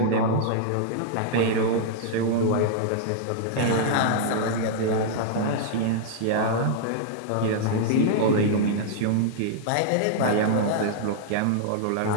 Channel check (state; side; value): different; both; correlation -0.01